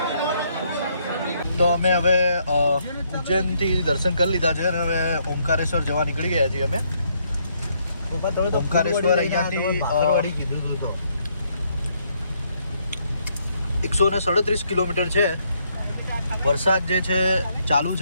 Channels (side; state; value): both; inverted; correlation -0.72